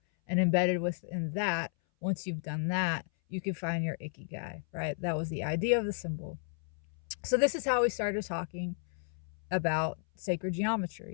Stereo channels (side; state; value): right; silent; 56 dB below the other